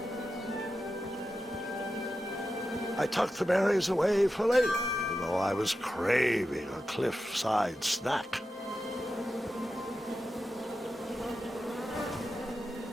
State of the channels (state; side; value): normal; both; correlation 0.90